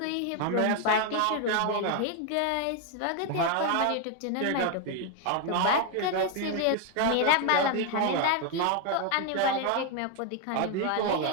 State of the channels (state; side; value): different; both; correlation 0.01